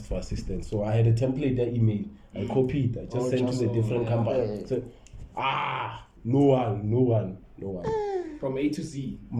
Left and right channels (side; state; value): both; identical; correlation 1.00